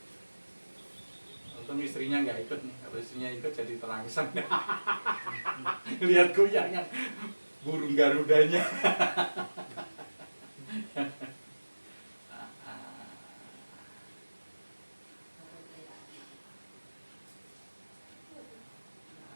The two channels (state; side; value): inverted; both; correlation -1.00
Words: Untung istrinya nggak ikut nih, kalau istrinya ikut jadi terangsang. Lihat goyangan burung garudanya.